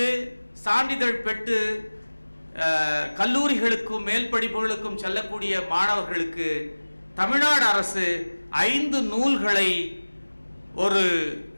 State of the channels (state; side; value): inverted; both; correlation -1.00